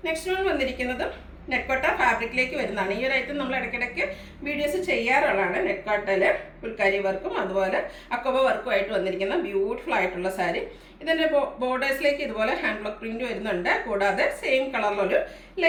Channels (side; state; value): both; identical; correlation 1.00